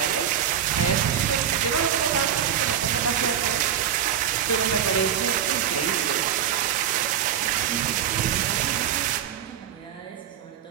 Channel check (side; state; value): left; quieter; 9.4 dB